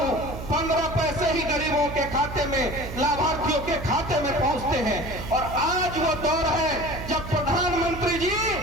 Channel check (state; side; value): noise; right; hum, 10 dB below the sound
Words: 15 पैसे ही गरीबों के खाते में, लाभार्थियों के खाते में पहुंचते हैं। और आज वो दौर है जब प्रधानमंत्री जी